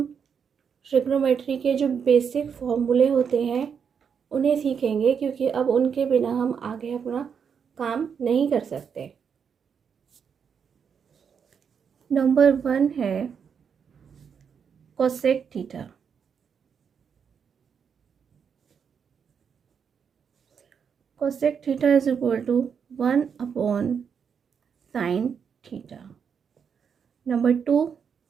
ट्रिग्नोमेट्री के जो बेसिक फॉर्मूले होते हैं उन्हें सीखेंगे, क्योंकि अब उनके बिना हम आगे अपना काम नहीं कर सकते। नंबर 1 है cosec theta. Cosec theta is equal to 1 upon sin theta. Number 2,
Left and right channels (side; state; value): left; quieter; 6.9 dB